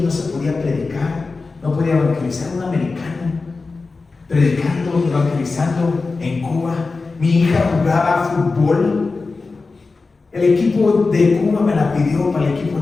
no se podía predicar, no podía evangelizar un americano. Predicando, evangelizando en Cuba. Mi hija jugaba fútbol. El equipo de Cuba me la pidió para el equipo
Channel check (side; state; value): right; quieter; 4.0 dB